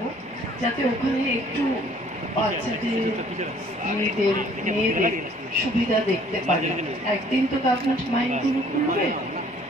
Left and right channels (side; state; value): both; normal; correlation 0.57